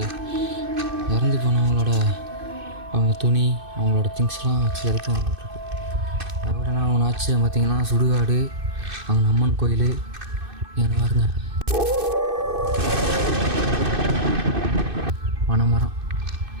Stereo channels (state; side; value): late; left; 2.6 ms